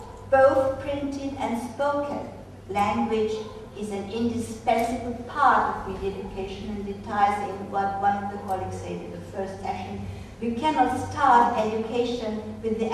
both printed and spoken. Language is an indispensable part of media education, and it ties in what one of the colleagues said in the first session. We cannot start education with the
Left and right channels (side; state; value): both; identical; correlation 1.00